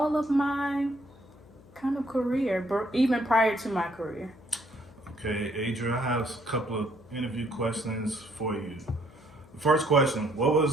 of my kind of career, even prior to my career. Okay, Adria, I have a couple of interview questions for you. The first question, what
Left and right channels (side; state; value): left; noise; hum, 24 dB below the sound